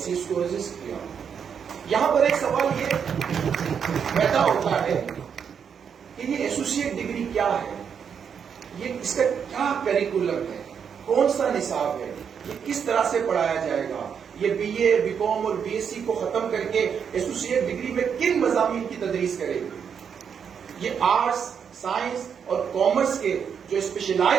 کو رجسٹ کیا. یہاں پر ایک سوال یہ پیدا ہوتا ہے کہ یہ ایسوسیٹ ڈگری کیا ہے, یہ اس کا کیا کریکولم ہے, کون سا نصاب ہے, یہ کس طرح سے پڑھایا جائے گا, یہ BA, BCom اور BSc کو ختم کر کے ایسوسیٹ ڈگری میں کن مضامین کی تدریس کرے گی. یہ آرٹس, سائنس اور کامرس کے جو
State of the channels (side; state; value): left; quieter; 7.2 dB